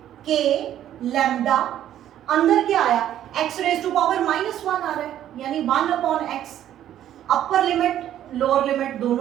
K लैम्डा, अंदर क्या आया, x रेज टू पावर -1 आ रहा है, यानी 1 upon x, upper limit lower limit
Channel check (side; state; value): left; quieter; 11.5 dB